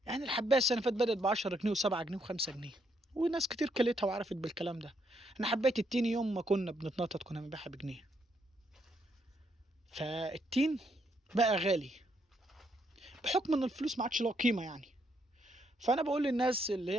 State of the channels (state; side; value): normal; both; correlation 0.74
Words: يعني الحبايه السنه اللي فاتت بدات ب 10 جنيه و7 جنيه و5 جنيه، وناس كتير كلتها وعرفت بالكلام ده. انا حبايه التين يوم ما كنا بنتنطط كنا بنبيعها بجنيه. فالتين بقى غالي بحكم ان الفلوس ما عادش لها قيمه يعني. فانا بقول للناس اللي